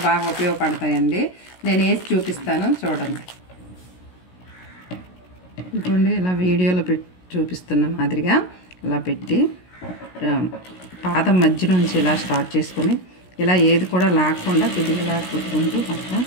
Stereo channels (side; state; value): right; late; 16 ms